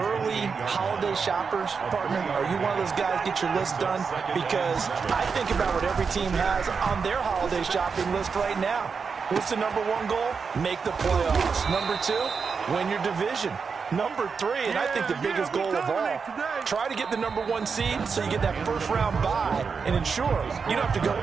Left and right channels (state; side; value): quieter; left; 5.5 dB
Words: holiday shoppers, partner? Are you one of those guys get your list done? Because I think about what every team has on their holiday shopping list right now. What's the number one goal? Make the playoffs. Number two, win your division. Number three, and I think the biggest goal of all, try to get the number one seed so you get that first round bye and ensure you don't have to go